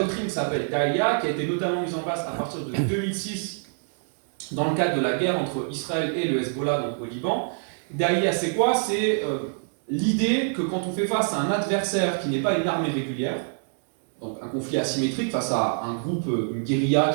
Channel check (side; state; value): left; silent; digital silence